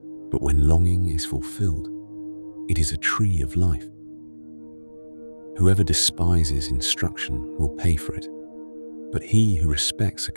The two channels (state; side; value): inverted; both; correlation -1.00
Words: but when longing is fulfilled, it is a tree of life. Whoever despises instruction will pay for it, but he who respects a